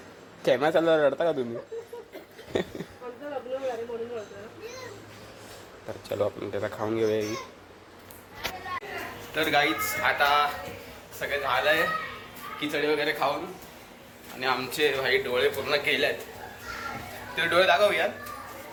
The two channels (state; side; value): identical; both; correlation 1.00